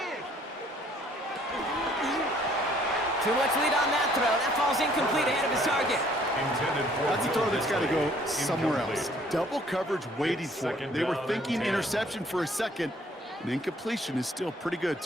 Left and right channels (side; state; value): both; normal; correlation 0.60